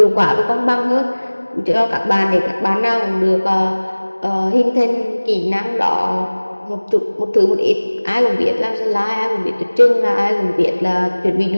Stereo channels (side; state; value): both; inverted; correlation -1.00